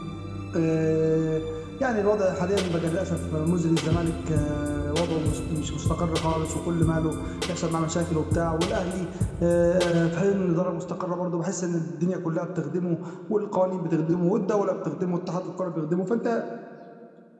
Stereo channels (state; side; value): identical; both; correlation 1.00